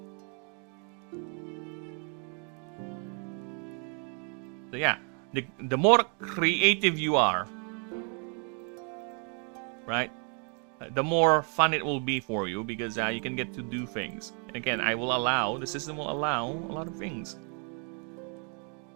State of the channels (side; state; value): left; quieter; 39.3 dB